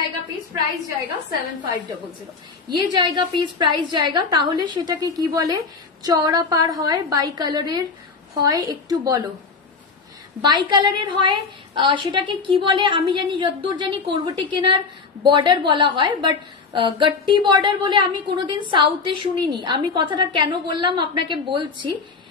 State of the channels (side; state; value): right; quieter; 4.8 dB